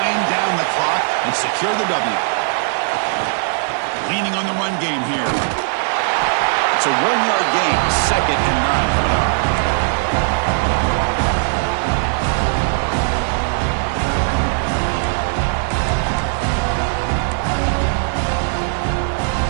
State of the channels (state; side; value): silent; left; digital silence